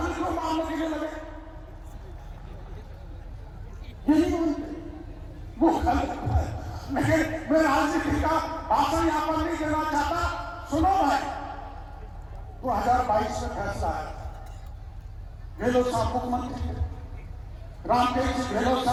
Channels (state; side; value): identical; both; correlation 1.00